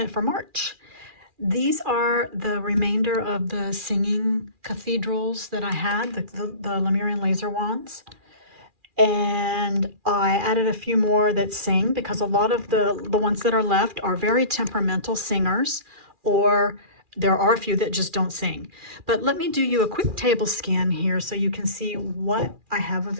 for March. These are the remainder of the singing cathedrals that I had, the Lemurian laser wands. And I added a few more that sing because a lot of the ones that are left are very temperamental singers, or there are a few that just don't sing. But let me do you a quick table scan here so you can see what I have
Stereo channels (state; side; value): late; left; 2.4 ms